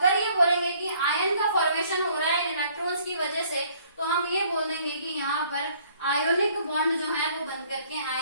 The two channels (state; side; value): inverted; both; correlation -0.60